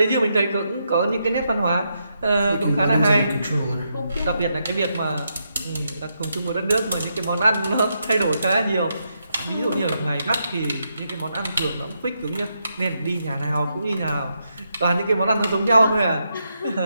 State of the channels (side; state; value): both; inverted; correlation -0.82